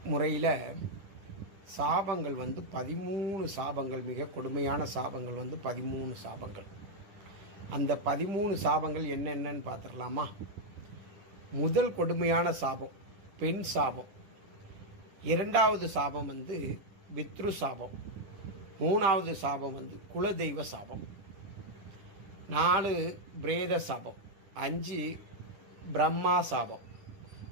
முறையில் சாபங்கள் 13 சாபங்கள், மிக கொடுமையான சாபங்கள் 13 சாபங்கள். அந்த 13 சாபங்கள் என்னென்னு பார்த்துடலாமா? முதல் கொடுமையான சாபம் பெண் சாபம். இரண்டாவது சாபம் பித்ரு சாபம். மூணாவது சாபம் குலதெய்வ சாபம். 4 பிரேத சாபம். 5 பிரம்மா சாபம்.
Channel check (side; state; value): left; late; 10 ms